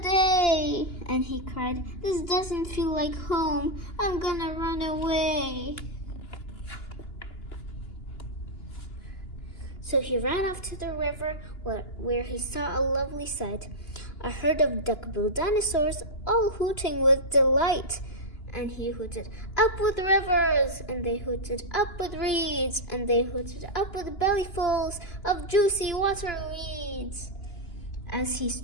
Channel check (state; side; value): late; right; 2.9 ms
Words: And he cried, "This doesn't feel like home. I'm gonna run away." So he ran off to the river where he saw a lovely sight, a herd of duck-billed dinosaurs all hooting with delight. And he hooted, "Up with rivers!" And they hooted, "Up with reeds!" And they hooted, "Up with bellyfuls of juicy water weeds!" As he